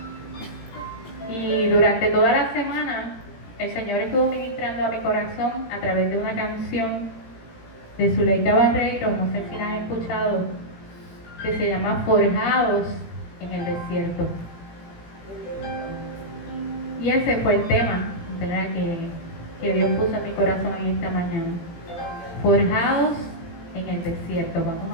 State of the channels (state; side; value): late; right; 18 ms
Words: Y durante toda la semana el Señor estuvo ministrando a mi corazón a través de una canción de Zuleika Barreiro, no sé si la han escuchado, que se llama Forjados en el Desierto. Y ese fue el tema, ¿verdad?, que Dios puso en mi corazón en esta mañana. Forjados en el desierto.